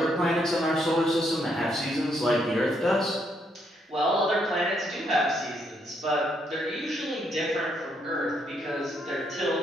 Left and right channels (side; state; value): both; normal; correlation 0.74